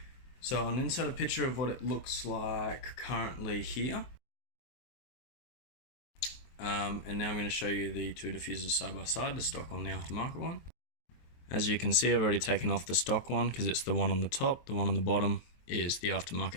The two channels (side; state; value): right; late; 23 ms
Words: So I'll insert a picture of what it looks like currently here. And now I'm going to show you the two diffusers side by side, the stock one, the aftermarket one. As you can see, I've already taken off the stock one because it's the one on the top. The one on the bottom is the